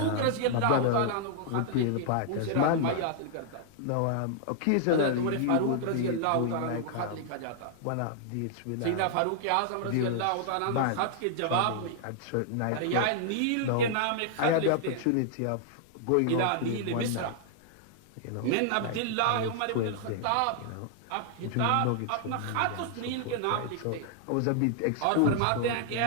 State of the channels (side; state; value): both; different; correlation -0.01